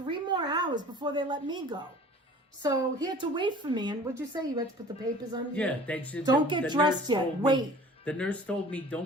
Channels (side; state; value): both; normal; correlation 0.46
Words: more hours before they let me go. So he had to wait for me. And what'd you say? You had to put the papers on you? Yeah. They should, don't get dressed yet. Wait. The nurse told me,